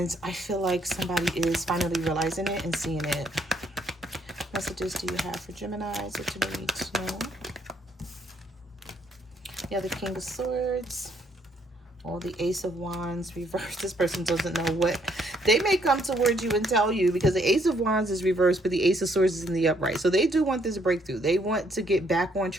I feel like somebody is finally realizing it and seeing it. What messages do you have for Geminis that you need to know? Yeah, the King of Swords. Or the Ace of Wands reversed. This person doesn't know what. They may come towards you and tell you, because the Ace of Wands is reversed, but the Ace of Swords is in the upright. So they do want this breakthrough. They want to get back on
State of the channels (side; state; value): both; normal; correlation 0.69